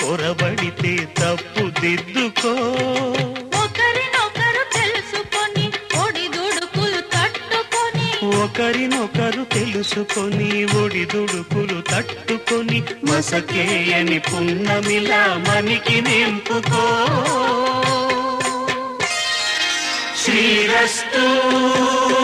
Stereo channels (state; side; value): identical; both; correlation 1.00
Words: పొరబడితే తప్పు దిద్దుకో ఒకరినొకరు తెలుసుకొని ఒడిదుడుకులు తట్టుకొని ఒకరినొకరు తెలుసుకొని ఒడిదుడుకులు తట్టుకొని మసకేయని పున్నమిలా మనికి నింపుకో శ్రీరస్తు